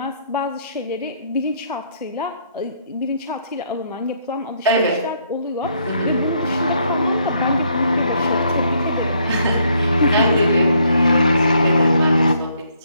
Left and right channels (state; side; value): inverted; both; correlation -0.70